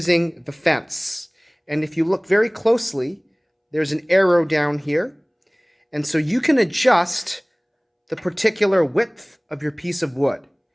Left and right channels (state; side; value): identical; both; correlation 1.00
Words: the fence. And if you look very closely, there's an arrow down here. And so you can adjust the particular width of your piece of wood.